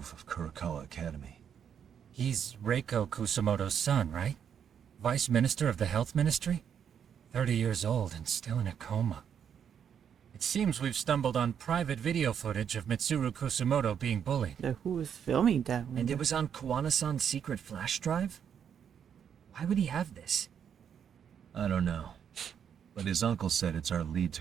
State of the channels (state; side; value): quieter; left; 8.2 dB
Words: of Kurakawa Academy. He's Reiko Kusumoto's son, right? Vice Minister of the Health Ministry? 30 years old and still in a coma. It seems we've stumbled on private video footage of Mitsuru Kusumoto being bullied. Who was filming that one? And it was on Kawana-san's secret flash drive? Why would he have this? I don't know. But his uncle said it's our lead to